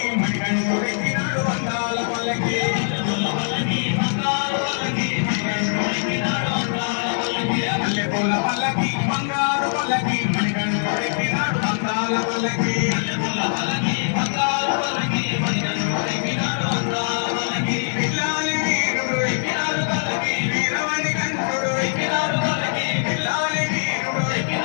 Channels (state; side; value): silent; right; 64 dB below the other